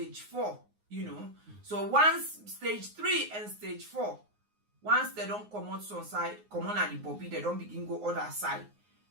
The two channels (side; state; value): left; late; 9.6 ms